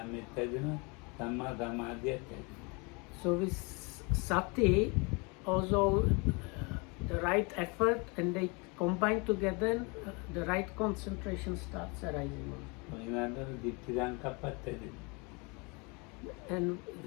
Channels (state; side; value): quieter; right; 30.0 dB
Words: So with sati, also the right effort, and they combine together, the right concentration starts arising. And